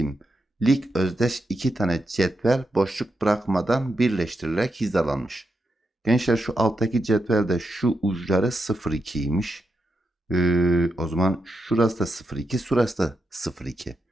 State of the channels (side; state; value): both; normal; correlation 0.85